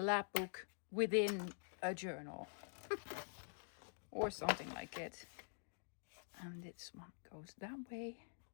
book within a journal. Or something like it. And this one goes that way.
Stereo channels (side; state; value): right; silent; digital silence